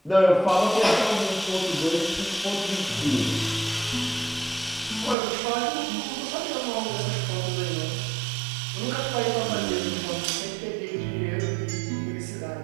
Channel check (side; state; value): left; drops out; at 5.2 s